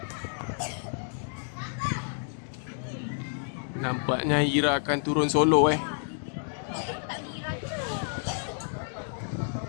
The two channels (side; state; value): right; silent; 58 dB below the other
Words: Nampaknya Ira akan turun solo